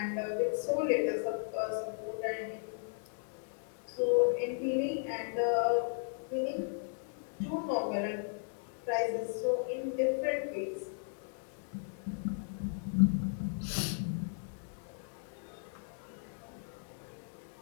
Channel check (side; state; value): right; silent; digital silence